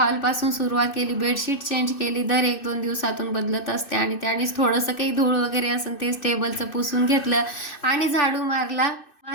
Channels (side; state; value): right; late; 2.6 ms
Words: सुरुवात केली. बेडशीट चेंज केली, दर 1-2 दिवसातून बदलत असते. आणि त्यानेच थोडंसं काही धूळ वगैरे असेल तेच टेबलचं पुसून घेतलं आणि झाडू मारला.